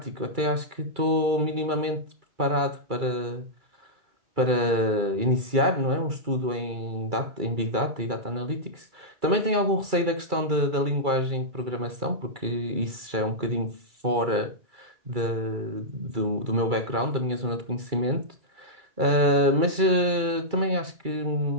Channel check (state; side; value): late; left; 2.3 ms